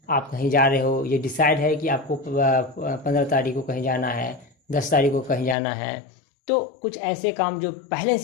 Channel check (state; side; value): drops out; right; at 5.6 s